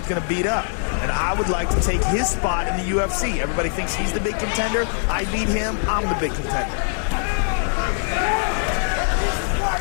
going to beat up. And I would like to take his spot in the UFC. Everybody thinks he's the big contender. I beat him, I'm the big contender.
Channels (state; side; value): silent; right; 59 dB below the other